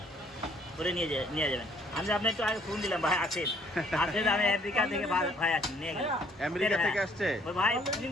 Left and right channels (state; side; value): normal; both; correlation 0.62